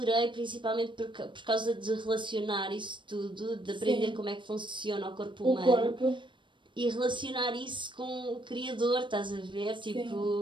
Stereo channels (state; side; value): late; left; 0.23 ms